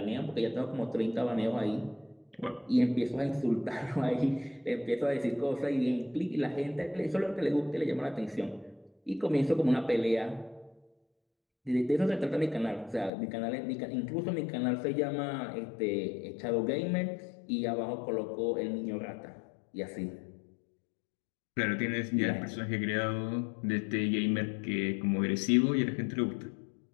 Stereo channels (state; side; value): drops out; right; at 13.1 s